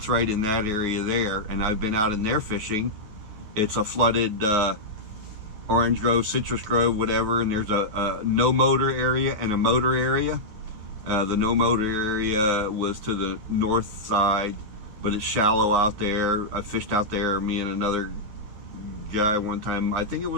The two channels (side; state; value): left; late; 9.5 ms